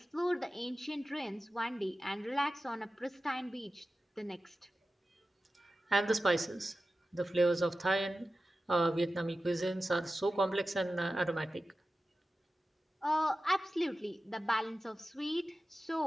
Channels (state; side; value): normal; both; correlation 0.94